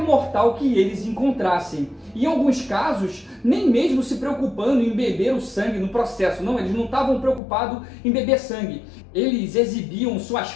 mortal que eles encontrassem. E em alguns casos, nem mesmo se preocupando em beber o sangue no processo. Não, eles não estavam preocupados em beber sangue. Eles exibiam suas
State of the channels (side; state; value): right; drops out; at 7.4 s